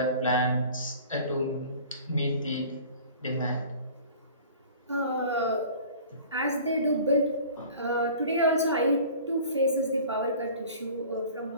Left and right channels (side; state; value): both; inverted; correlation -0.44